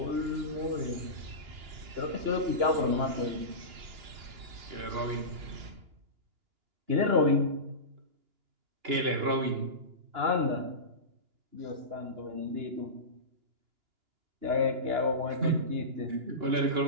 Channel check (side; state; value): left; late; 2.9 ms